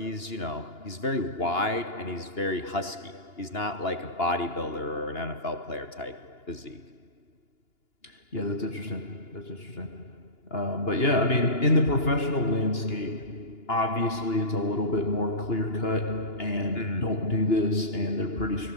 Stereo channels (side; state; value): right; late; 2.9 ms